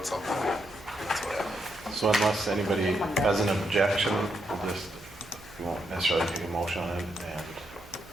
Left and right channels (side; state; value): right; noise; hum, 22 dB below the sound